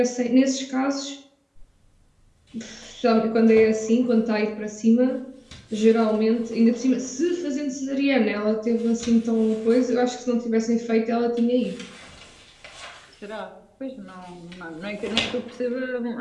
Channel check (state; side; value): identical; both; correlation 1.00